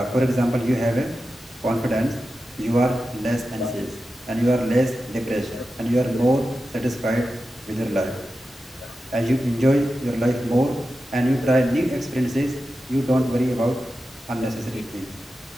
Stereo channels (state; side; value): normal; both; correlation 0.92